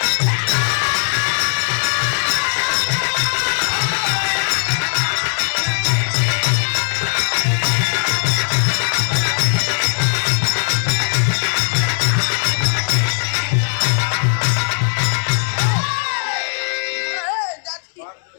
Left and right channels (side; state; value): right; silent; 65 dB below the other